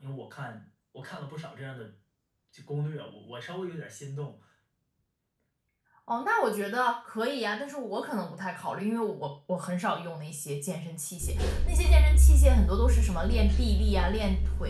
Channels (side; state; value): both; identical; correlation 1.00